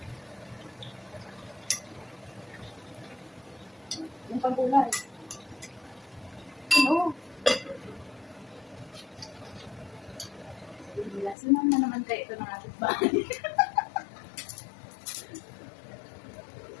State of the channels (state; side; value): drops out; right; at 11.4 s